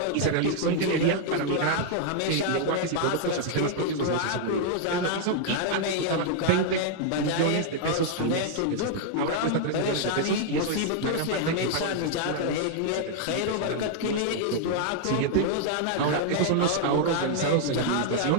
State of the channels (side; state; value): both; different; correlation 0.00